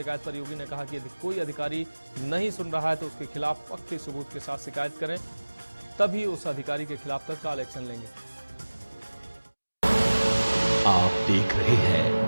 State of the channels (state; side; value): inverted; both; correlation -1.00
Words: पर योगी ने कहा कि यदि कोई अधिकारी नहीं सुन रहा है तो उसके खिलाफ पक्के सबूत के साथ शिकायत करें, तभी उस अधिकारी के खिलाफ तत्काल एक्शन लेंगे। आप देख रहे